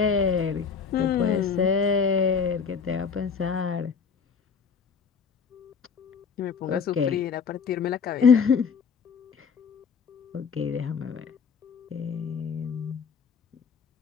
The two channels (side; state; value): right; quieter; 6.0 dB